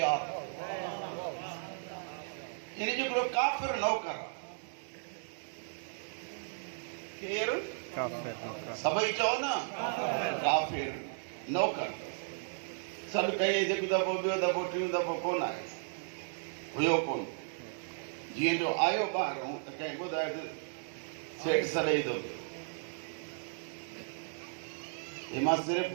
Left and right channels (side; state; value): left; silent; digital silence